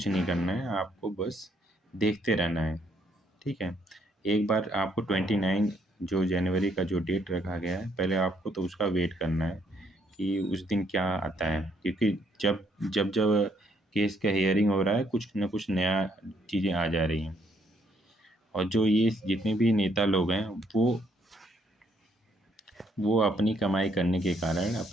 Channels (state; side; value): normal; both; correlation 0.70